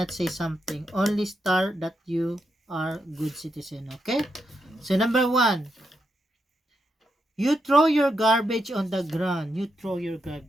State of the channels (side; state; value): both; normal; correlation 0.83